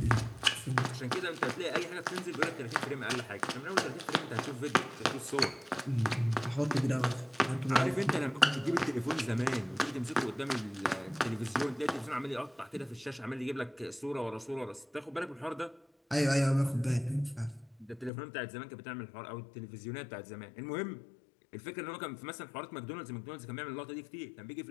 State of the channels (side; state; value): right; drops out; at 18.1 s